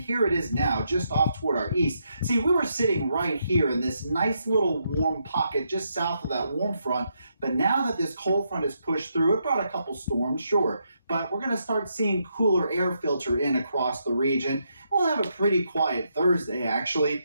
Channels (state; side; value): inverted; both; correlation -0.79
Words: it is now, just off toward our east. See, we were sitting right here in this nice little warm pocket just south of that warm front, but now that this cold front has pushed through, it brought a couple storms, sure, but we're going to start seeing cooler air filter in across the region. We'll have a pretty quiet Thursday, actually.